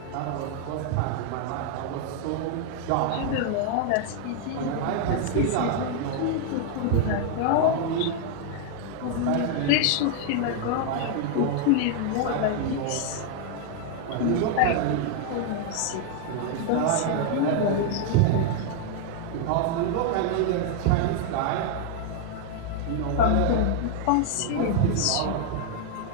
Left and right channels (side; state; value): both; different; correlation 0.00